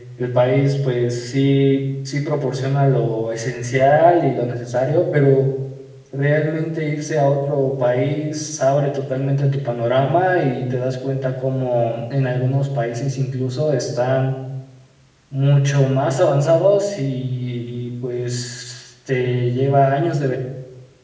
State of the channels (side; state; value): both; identical; correlation 1.00